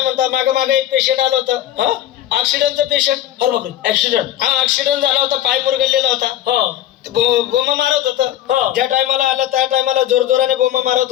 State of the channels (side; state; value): right; quieter; 12.2 dB